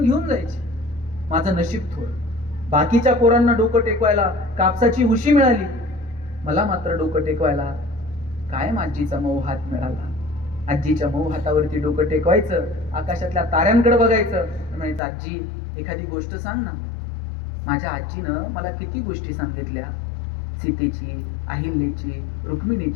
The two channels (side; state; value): right; drops out; at 15.0 s